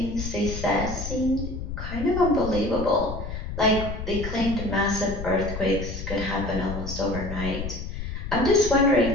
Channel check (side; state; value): left; noise; rumble, 6 dB below the sound